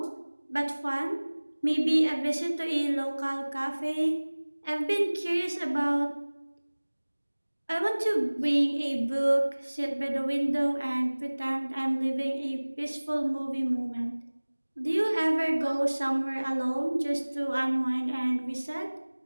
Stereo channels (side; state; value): both; inverted; correlation -1.00